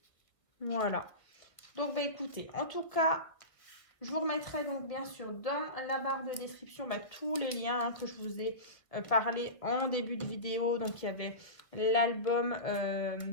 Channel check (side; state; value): right; late; 1.7 ms